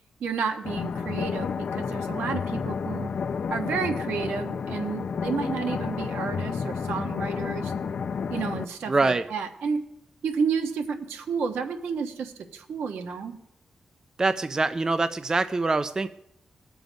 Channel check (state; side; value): normal; both; correlation 0.79